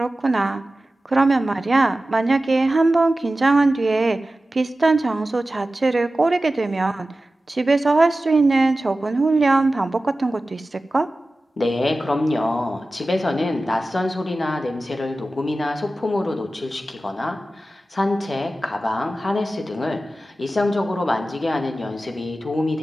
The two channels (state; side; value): normal; both; correlation 0.95